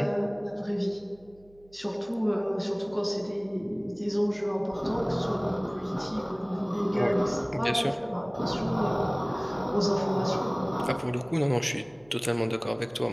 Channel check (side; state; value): right; noise; hum, 28 dB below the sound